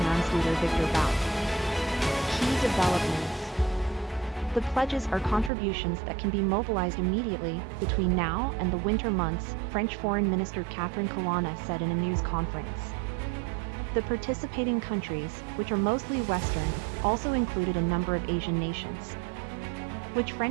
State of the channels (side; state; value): left; drops out; at 5.5 s